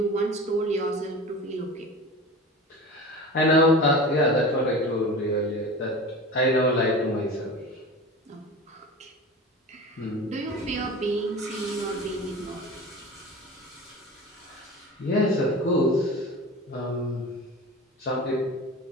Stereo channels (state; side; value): normal; both; correlation 0.33